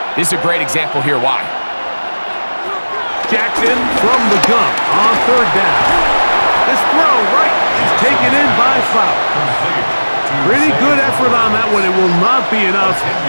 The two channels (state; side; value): inverted; both; correlation -1.00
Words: this is a great example here why. Jackson from the gun on 3rd down. This throw right is taken in by Flower. Pretty good effort on that one. It will not be enough.